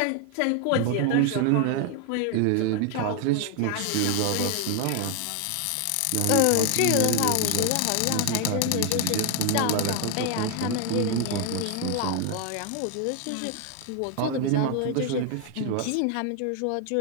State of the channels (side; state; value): both; different; correlation 0.01